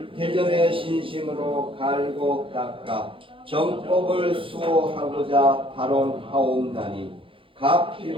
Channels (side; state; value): left; late; 0.25 ms